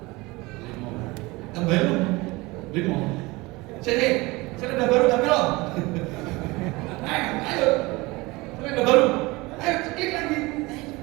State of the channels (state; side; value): quieter; left; 22.7 dB